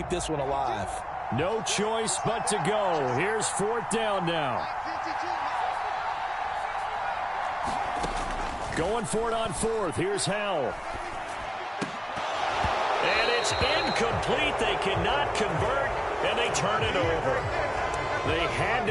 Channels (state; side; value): identical; both; correlation 1.00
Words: this one alive. No choice but to go. Here's 4th down now. Going for it on 4th. Here's Howell. And it's incomplete. They cannot convert, and they turn it over. They had